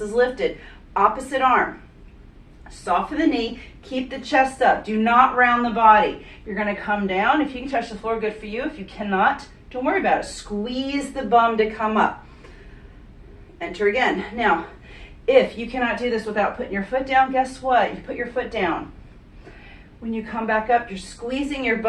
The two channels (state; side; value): identical; both; correlation 1.00